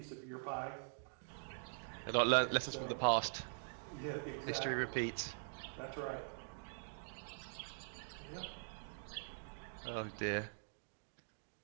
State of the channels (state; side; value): silent; left; digital silence